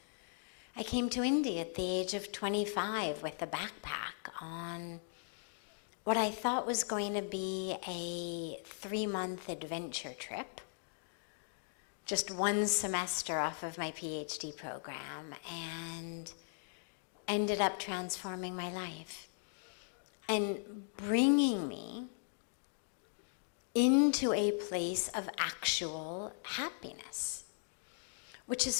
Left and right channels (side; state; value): right; silent; digital silence